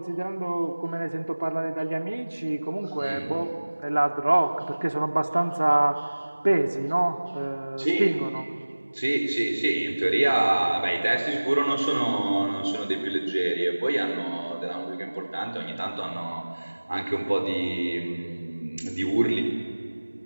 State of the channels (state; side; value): inverted; both; correlation -1.00